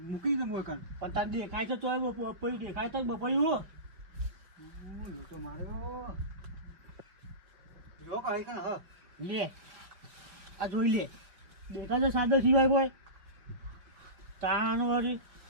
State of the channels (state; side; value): late; left; 5.4 ms